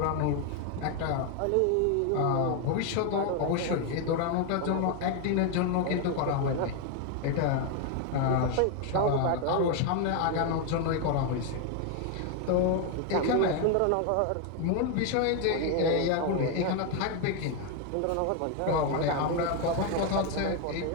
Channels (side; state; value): both; different; correlation 0.01